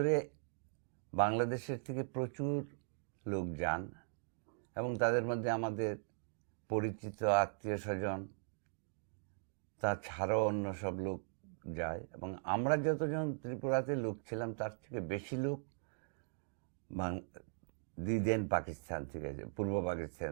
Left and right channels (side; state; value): left; silent; digital silence